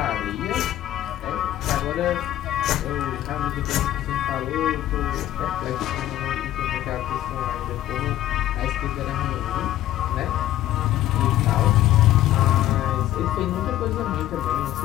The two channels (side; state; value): right; quieter; 13.6 dB